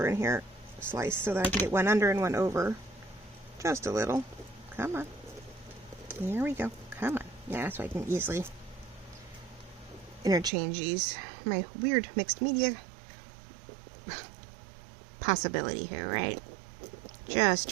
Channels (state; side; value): drops out; left; at 10.5 s